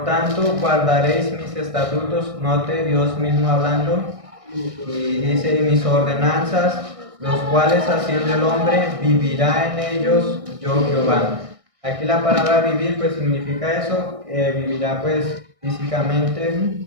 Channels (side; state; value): left; late; 1.6 ms